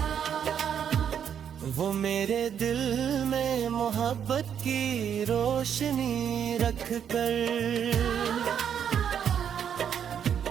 मेरे दिल में मोहब्बत की रोशनी रख कर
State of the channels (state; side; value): quieter; left; 8.5 dB